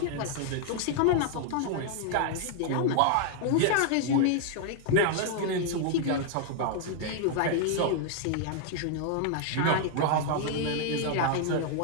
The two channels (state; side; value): different; both; correlation 0.00